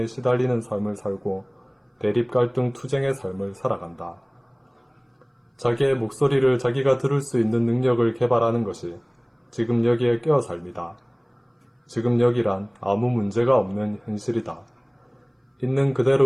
시달리는 삶을 살고 대립갈등 투쟁의 삶을 살아간다. 자기의 목소리를 자기가 들을 수 있는 능력을 개발하는 것이 지금 여기에 깨어 삶이다. 지금 여기란 아무 문제가 없는 현실이다. 있는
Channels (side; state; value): both; identical; correlation 1.00